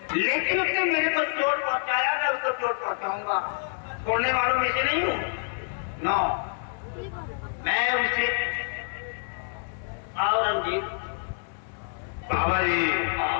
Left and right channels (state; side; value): silent; right; digital silence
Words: लेकिन उसने मेरे को चोट पहुंचाया, मैं उसको चोट पहुंचाऊंगा, छोड़ने वालों में से नहीं हूँ। नो, मैं उसे और रंजीत बाबा जी,